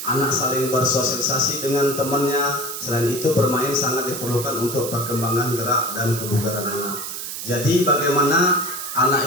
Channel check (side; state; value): right; noise; hiss, 7 dB below the sound